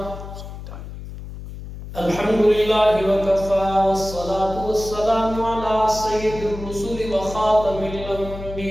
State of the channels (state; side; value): noise; left; hum, 11 dB below the sound